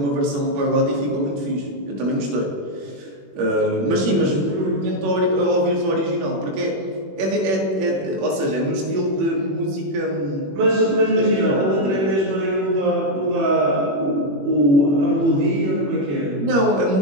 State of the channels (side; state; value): left; late; 21 ms